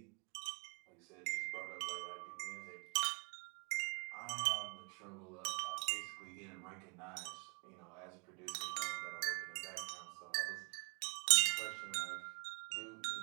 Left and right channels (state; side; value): quieter; left; 35.9 dB